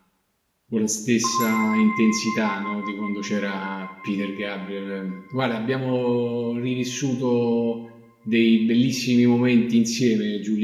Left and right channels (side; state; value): both; identical; correlation 1.00